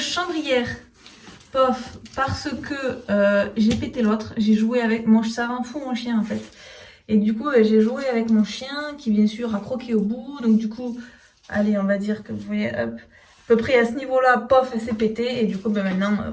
pof parce que j'ai pété l'autre. J'ai joué avec mon, ça rend fou mon chien en fait. Et du coup, j'ai joué avec mon chien qui, bien sûr, a croqué au bout. Donc, du coup, allez, on va dire que vous voyez, hop, à peu près à ce niveau-là, pof, elle s'est pétée. Et du coup, maintenant,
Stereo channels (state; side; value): identical; both; correlation 1.00